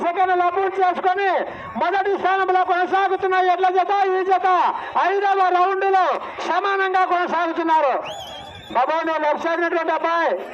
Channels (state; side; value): identical; both; correlation 1.00